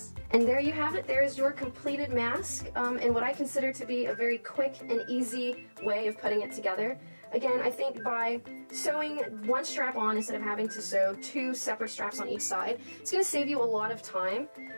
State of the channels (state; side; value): inverted; both; correlation -1.00